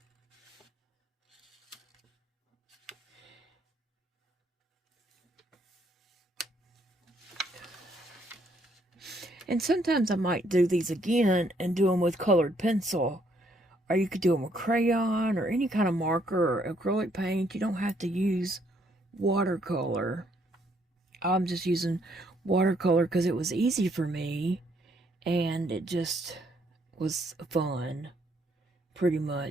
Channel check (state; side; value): normal; both; correlation 0.70